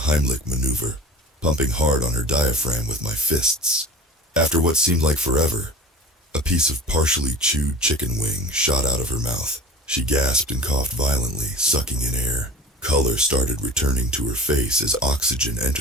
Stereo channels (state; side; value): normal; both; correlation 0.37